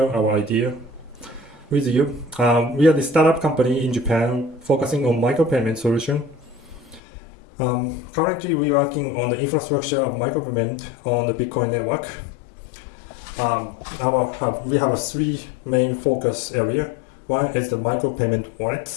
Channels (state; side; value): drops out; right; at 7.0 s